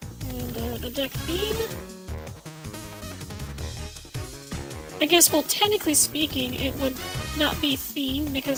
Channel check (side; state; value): both; identical; correlation 1.00